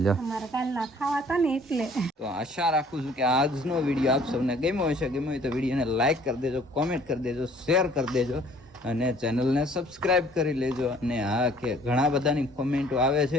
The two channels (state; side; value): normal; both; correlation 0.56